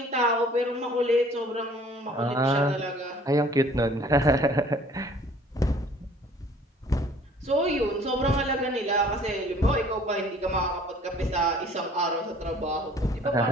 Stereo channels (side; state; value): both; normal; correlation 0.54